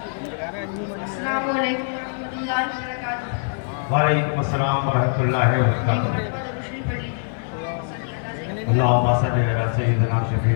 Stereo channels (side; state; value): right; silent; digital silence